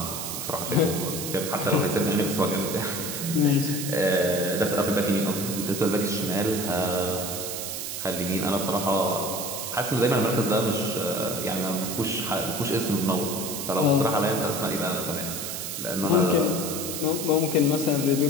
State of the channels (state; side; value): noise; right; hiss, 5 dB below the sound